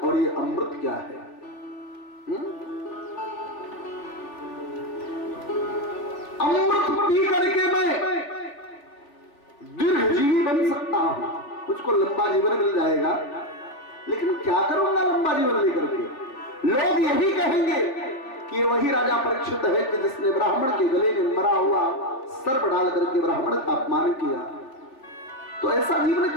ये अमृत क्या है। अमृत पी करके मैं दीर्घजीवी बन सकता हूं, मुझको लंबा जीवन मिल जाएगा, लेकिन क्या करूंगा लंबा जीवन लेकर के? लोग यही कहेंगे कि वही राजा परीक्षित है कि जिसने ब्राह्मण के गले में मरा हुआ सर्प डाल करके ब्राह्मण का अपमान किया। तो ऐसा जीवन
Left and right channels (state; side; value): late; right; 3.5 ms